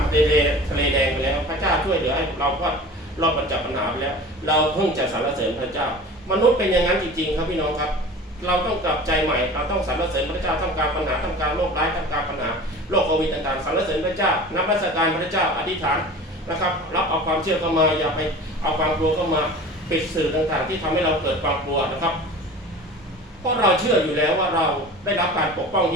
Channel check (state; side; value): normal; both; correlation 0.39